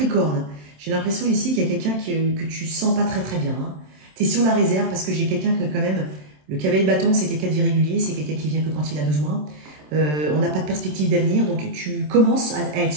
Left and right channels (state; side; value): late; left; 27 ms